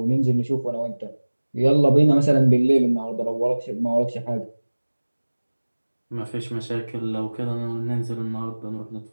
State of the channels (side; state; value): both; inverted; correlation -1.00